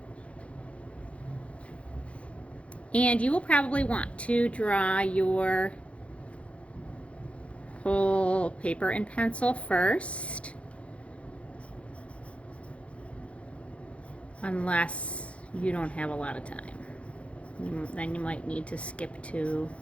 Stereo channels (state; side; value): late; right; 0.062 ms